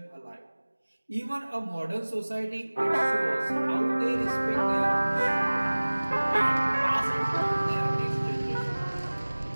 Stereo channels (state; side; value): inverted; both; correlation -1.00